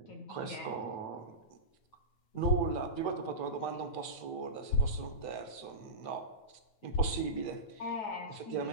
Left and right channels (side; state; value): right; late; 9.2 ms